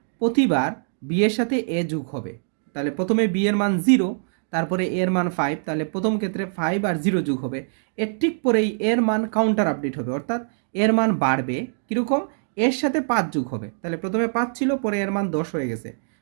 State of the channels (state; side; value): silent; left; digital silence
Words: প্রতিবার বি এর সাথে এ যোগ হবে, তাহলে প্রথমে বি এর মান 0, তারপরে এর মান 5, তাহলে প্রথম ক্ষেত্রে 5 আর 0 যোগ হবে, এর ঠিক পরেই এর মান কাউন্টার আপডেট হবে, অর্থাৎ এর মান বাড়বে, কীরকম, এর সাথে 5 যোগ হবে, তাহলে প্রথমে 5 ছিল, পরে এর মান 10 হয়ে গেছে।